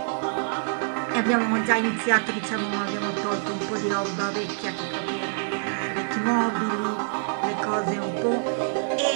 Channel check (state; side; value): silent; left; 61 dB below the other